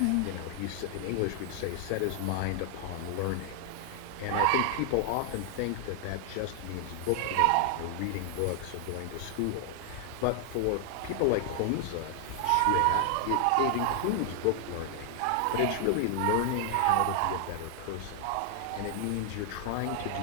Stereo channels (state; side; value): different; both; correlation 0.00